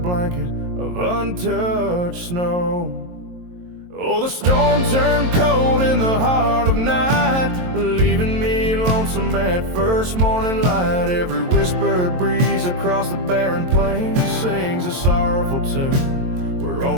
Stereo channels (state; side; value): late; left; 22 ms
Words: of untouched snow. Oh, the storm turned cold in the heart of night, leaving me lonesome at first morning light. Every whispered breeze across the barren plains sings a sorrowful tune where